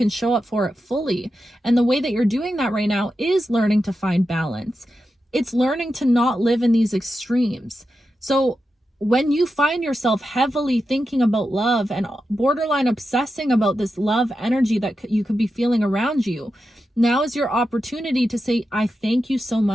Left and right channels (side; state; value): both; normal; correlation 0.89